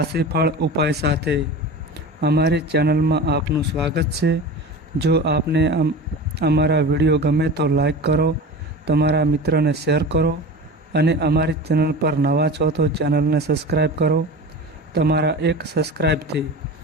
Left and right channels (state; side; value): normal; both; correlation 0.32